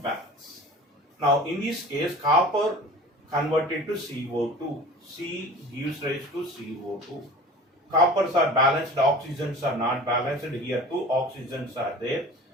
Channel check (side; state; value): both; normal; correlation 0.40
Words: Now in this case, copper converted to CO2. C gives rise to CO2. Coppers are balanced, oxygens are not balanced. Here two oxygens are there.